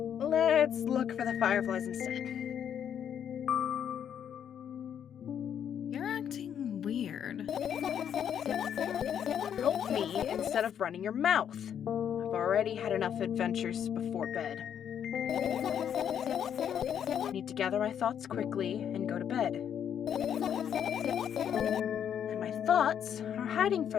Let's look for the fireflies instead. You're acting weird. Help me instead of running your mouth. I've already had enough adventures before bed. I need to gather my thoughts quickly and go to bed. And my thoughts are hiding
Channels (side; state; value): right; quieter; 8.9 dB